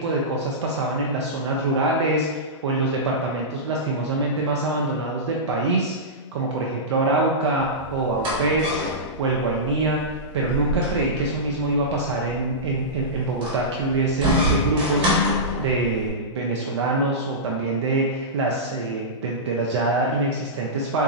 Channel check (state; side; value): normal; both; correlation -0.16